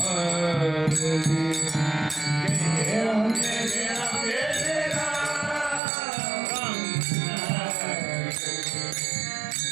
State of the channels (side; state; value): left; drops out; at 5.8 s